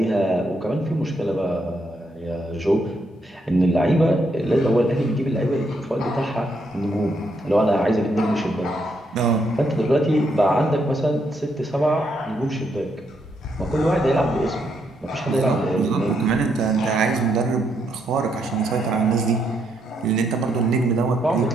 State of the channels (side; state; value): both; normal; correlation 0.77